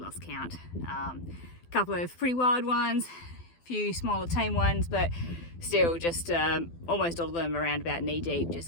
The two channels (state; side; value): late; right; 12 ms